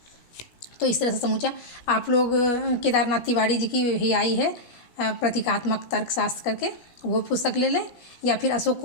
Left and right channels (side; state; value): right; late; 16 ms